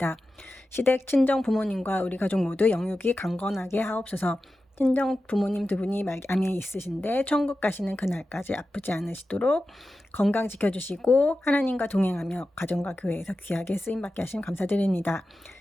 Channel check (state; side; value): normal; both; correlation 0.93